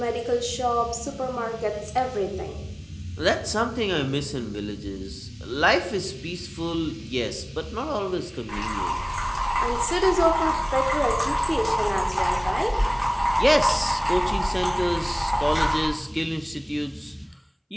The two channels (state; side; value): identical; both; correlation 1.00